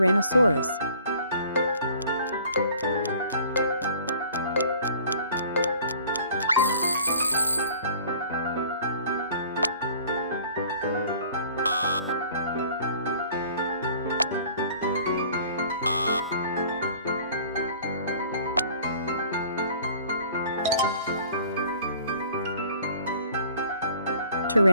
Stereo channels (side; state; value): both; inverted; correlation -0.51